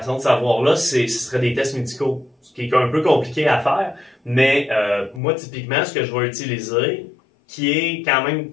de savoir-là, ce seraient des tests médicaux, ce qui est un peu compliqué à faire, mais moi, typiquement, ce que je vais utiliser, qui est quand même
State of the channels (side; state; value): right; drops out; at 5.2 s